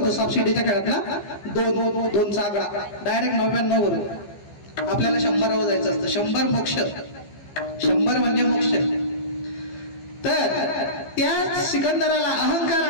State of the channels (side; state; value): right; late; 15 ms